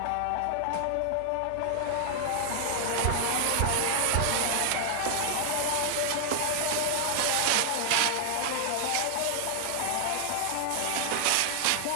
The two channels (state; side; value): different; both; correlation -0.01